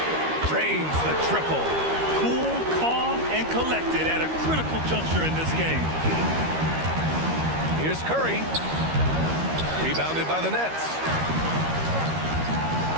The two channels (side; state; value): left; late; 13 ms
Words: Drains the triple. Cool, calm, and collected at a critical juncture in this game. Here's Curry. Rebounded by the Nets.